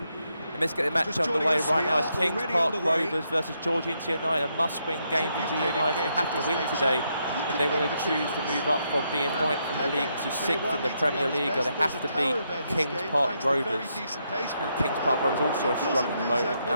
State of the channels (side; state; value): both; inverted; correlation -0.79